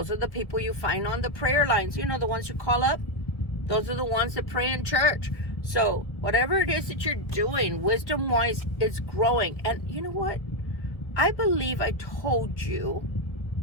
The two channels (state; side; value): late; right; 1.8 ms